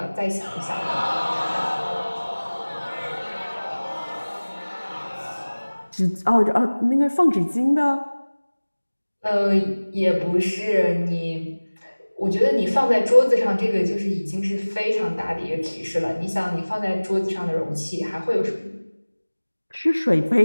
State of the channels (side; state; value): both; inverted; correlation -1.00